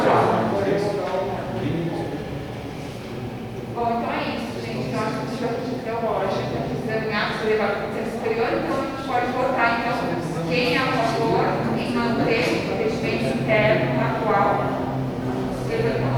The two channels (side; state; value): both; identical; correlation 1.00